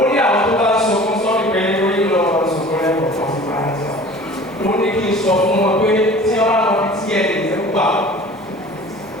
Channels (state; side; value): normal; both; correlation 0.43